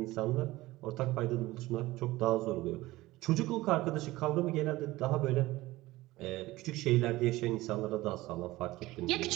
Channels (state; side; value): quieter; left; 18.4 dB